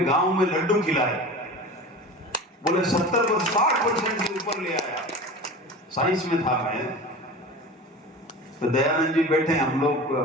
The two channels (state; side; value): normal; both; correlation 0.34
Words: गांव में लड्डू खिलाए, बोले 70-60% से ऊपर ले आया। साइंस में था मैं, तो दयानंद जी बैठे, हम लोग